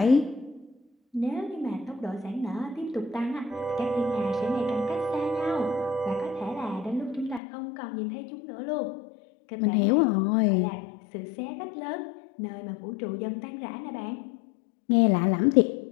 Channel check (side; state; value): right; drops out; at 7.4 s